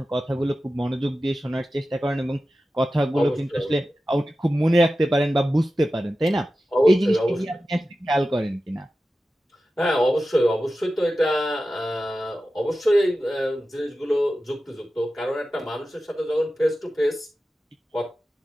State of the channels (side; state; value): both; normal; correlation 0.94